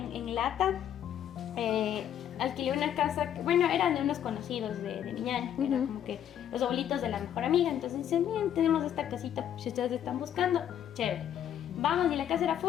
en Lata alquilé una casa, bueno, eran de unos conocidos de mi ñaña, que eran como que los abuelitos de la mejor amiga. Entonces dicen, miren, tenemos esta casita, si ustedes están buscando, chévere. Vamos, y la casa era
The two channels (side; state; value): right; quieter; 10.1 dB